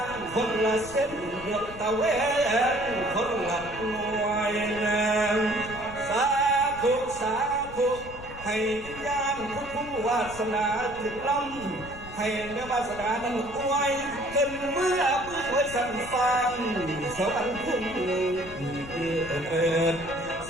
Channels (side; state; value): left; noise; rumble, 15 dB below the sound